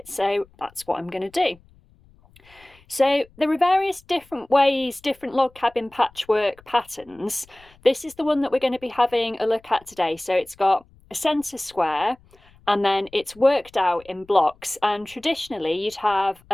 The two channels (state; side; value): noise; left; rumble, 29 dB below the sound